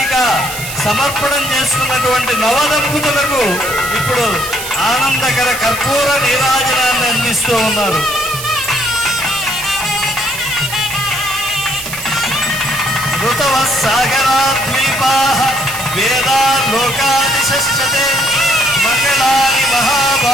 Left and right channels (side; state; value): right; noise; hiss, 8 dB below the sound